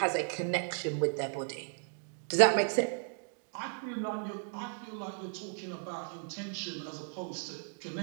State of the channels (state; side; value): silent; left; 55 dB below the other